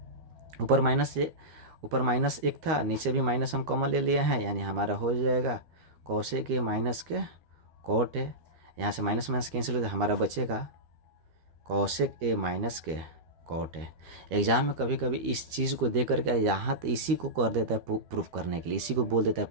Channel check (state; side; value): late; left; 13 ms